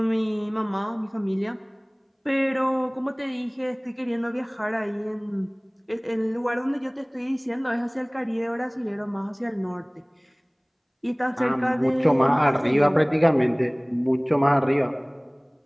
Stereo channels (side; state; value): both; identical; correlation 1.00